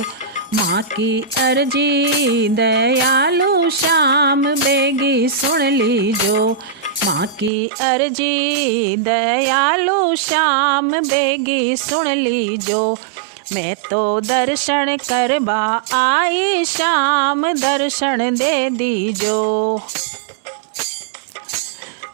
माँ की अर्जी दयालु श्याम बेगी सुन लीजो। माँ की अर्जी दयालु श्याम बेगी सुन लीजो। मैं तो दर्शन करवा आई श्याम दर्शन दे दीजो।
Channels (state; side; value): drops out; left; at 7.5 s